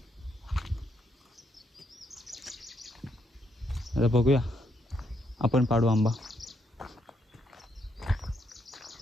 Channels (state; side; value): normal; both; correlation 0.76